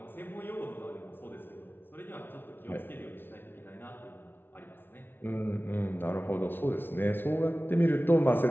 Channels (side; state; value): right; late; 0.10 ms